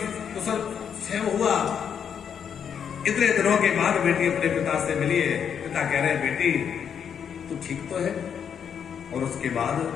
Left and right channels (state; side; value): quieter; right; 7.8 dB